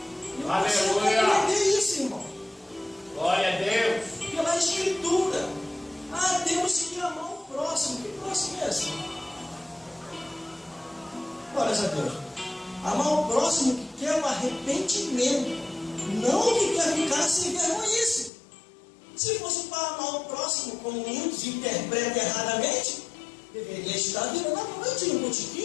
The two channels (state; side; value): drops out; right; at 18.3 s